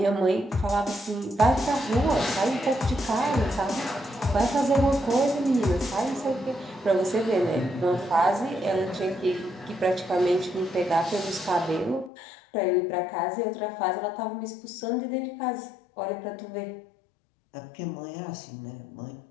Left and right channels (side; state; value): right; drops out; at 12.1 s